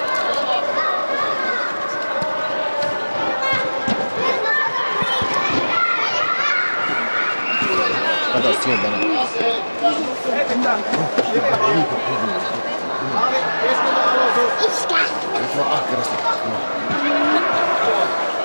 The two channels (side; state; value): both; inverted; correlation -1.00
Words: Kato sieltä nyt. Nyt vaan ahkerasti.